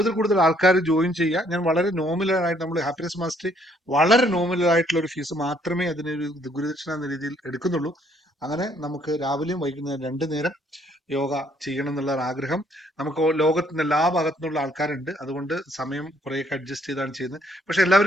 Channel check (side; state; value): both; normal; correlation 0.66